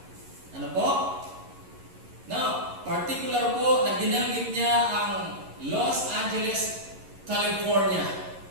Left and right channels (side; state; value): left; late; 11 ms